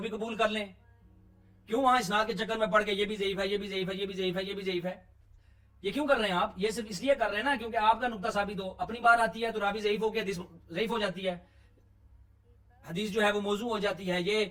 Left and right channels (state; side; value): identical; both; correlation 1.00